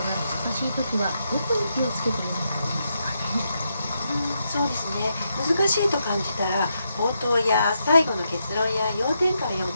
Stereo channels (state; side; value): inverted; both; correlation -0.82